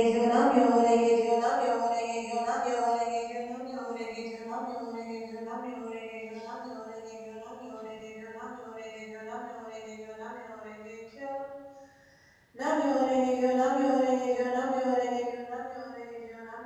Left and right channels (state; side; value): identical; both; correlation 1.00